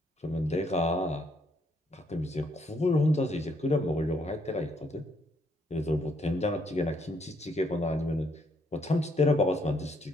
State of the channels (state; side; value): normal; both; correlation 0.72